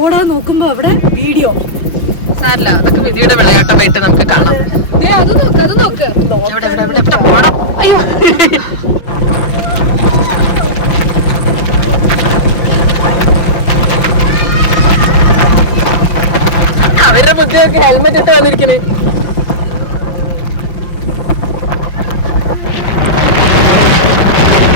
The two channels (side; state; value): right; late; 5.7 ms